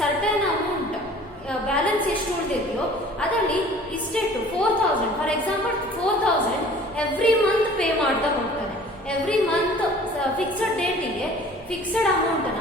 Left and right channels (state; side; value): noise; left; rumble, 27 dB below the sound